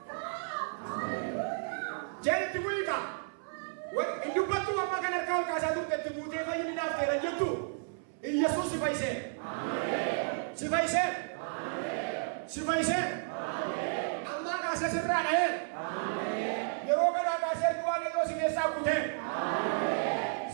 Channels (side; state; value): left; silent; 56 dB below the other